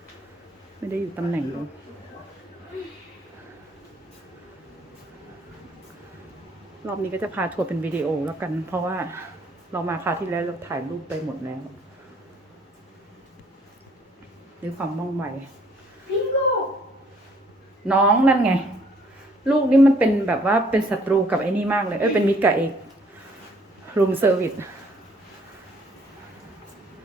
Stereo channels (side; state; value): both; normal; correlation 0.62